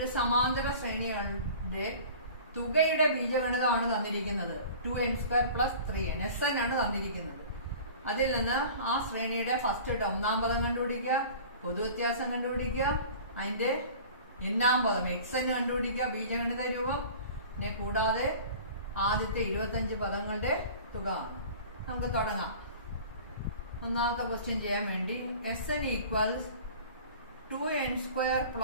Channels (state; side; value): inverted; both; correlation -0.42